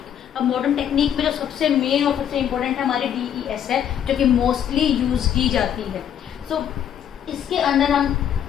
अब मॉडर्न टेक्निक में जो सबसे मेन और सबसे इम्पोर्टेंट है हमारी DES है, जो कि मोस्टली यूज की जाती है। सो इसके अंदर हम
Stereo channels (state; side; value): quieter; right; 9.5 dB